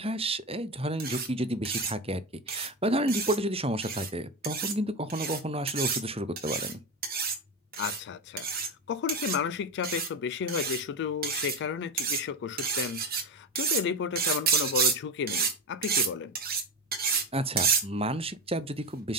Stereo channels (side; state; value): both; normal; correlation 0.18